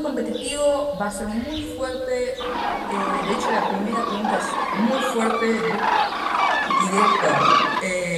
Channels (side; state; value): both; identical; correlation 1.00